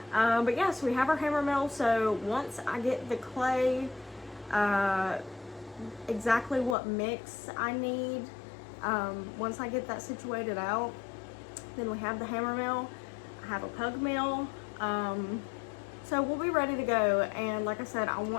But yes, yeah, so we have our hammer mill, so once I get the clay, exactly what mix I need, once I get that situated out, then we have the hammer mill, I have a pug mill, so we'll be ready to go. And like I said, I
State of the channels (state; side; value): drops out; right; at 6.8 s